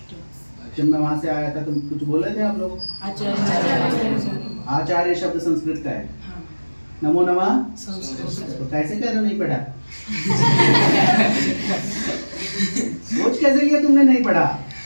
जब मैं वहां से आया था, तुम कुछ बोले थे आप लोग? आचार्य शब्द संस्कृत का है। नमो नमः तो कैसे कह रहे हो नहीं पढ़ा? सोच कैसे लिया तुमने नहीं पढ़ा?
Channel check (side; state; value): both; inverted; correlation -1.00